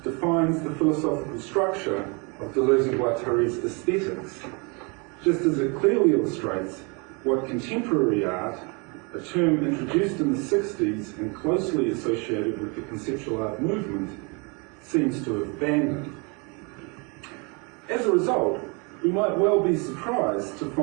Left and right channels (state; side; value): quieter; left; 31.8 dB